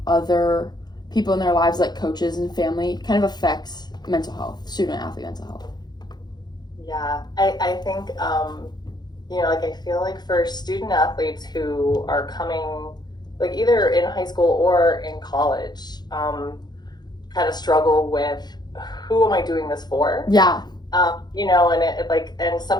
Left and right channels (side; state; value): right; late; 0.20 ms